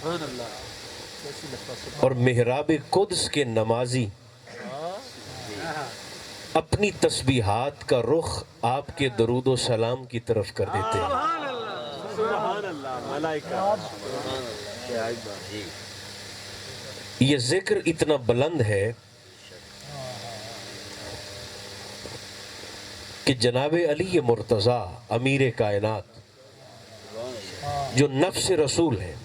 اللہ. اور محراب قدس کے نمازی اپنی تسبیحات کا رخ آپ کے درود و سلام کی طرف کر دیتے ہیں. سبحان اللہ. ملائکہ. یہ ذکر اتنا بلند ہے کہ جناب علی مرتضیٰ امیر کائنات جو نفس رسول ہے،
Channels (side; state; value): both; identical; correlation 1.00